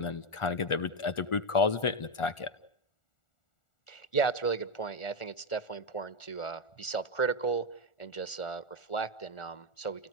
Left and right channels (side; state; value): right; late; 1.4 ms